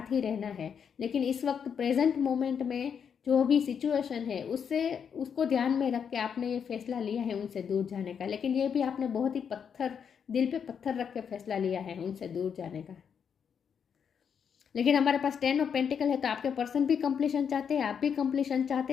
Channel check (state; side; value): quieter; right; 7.3 dB